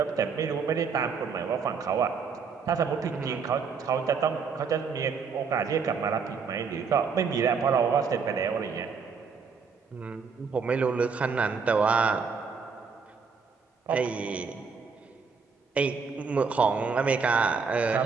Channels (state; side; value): quieter; left; 5.5 dB